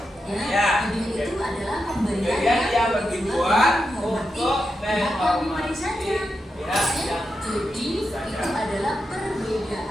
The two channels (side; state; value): both; normal; correlation 0.87